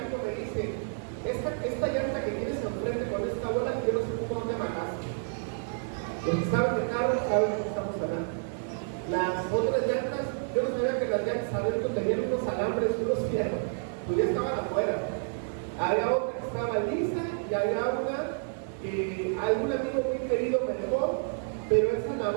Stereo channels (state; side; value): silent; left; digital silence